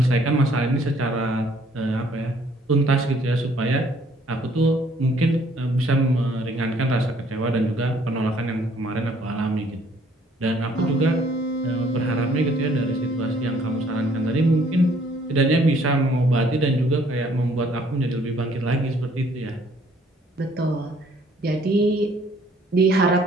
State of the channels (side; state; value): both; normal; correlation 0.61